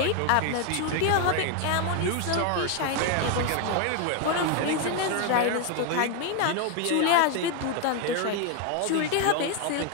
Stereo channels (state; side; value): different; both; correlation 0.01